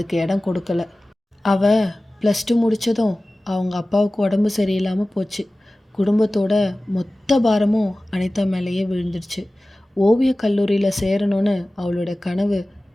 இடம் கொடுக்கல. அவள் +2 முடித்ததும் அவங்க அப்பாவுக்கு உடம்பு சரியில்லாமல் போச்சு. குடும்பத்தோட மொத்த பாரமும் அனிதா மேலேயே விழுந்துடுச்சு. ஓவிய கல்லூரியில் சேரணும்னு அவளோட கனவு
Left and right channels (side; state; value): both; normal; correlation 0.97